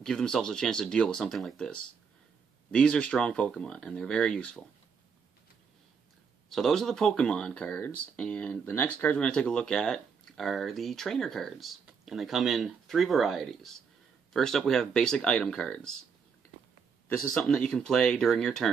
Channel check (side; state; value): left; quieter; 6.1 dB